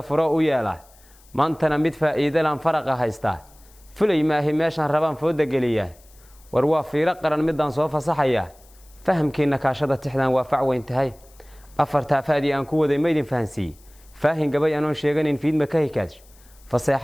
furo u yeelaa maantana mid faa'iido laan faraqa haystaa fulay maahi meeshan rabaan fooda geliyaa war waa fiiro qaran midaan soo fasaxaya fahamkiina kaashada tixdan waa fac weyn tahay afarta faadi aan ku waday meedin fahansi faahin gabay aan sheeganin fiidma ka hikaaj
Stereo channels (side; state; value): left; noise; hiss, 28 dB below the sound